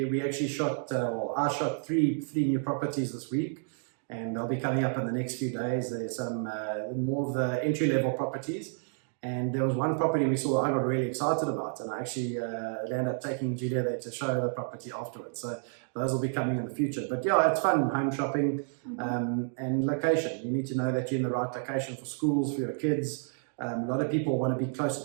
actually shot, I shot three new properties this week, and they'll be coming up in the next few days. There's some more of the entry-level properties, and there was one property we saw I got really excited about, and I actually ended up taking Julia there to show the property afterwards. So those will be coming in the future. But yeah, it's fun, home shopping, and location. You need to know that you're in the right location for schools, for your kids. A lot of people want to be close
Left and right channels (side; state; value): left; silent; 58 dB below the other